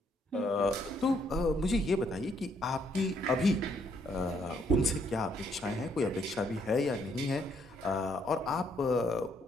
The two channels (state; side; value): normal; both; correlation 0.70